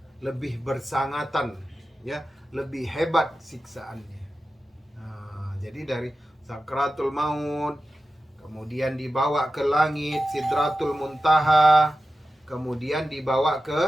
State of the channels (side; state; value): both; normal; correlation 0.93